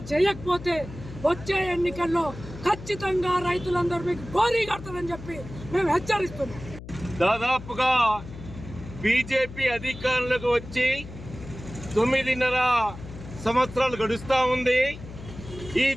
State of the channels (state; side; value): noise; left; hum, 13 dB below the sound